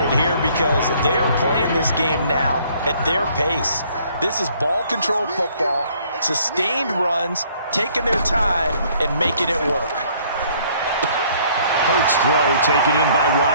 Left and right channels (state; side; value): inverted; both; correlation -0.61